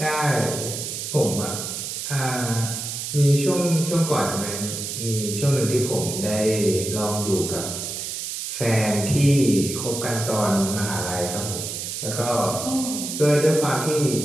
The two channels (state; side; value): noise; right; hiss, 5 dB below the sound